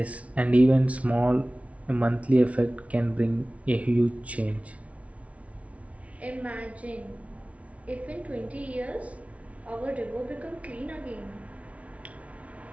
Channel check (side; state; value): left; late; 0.065 ms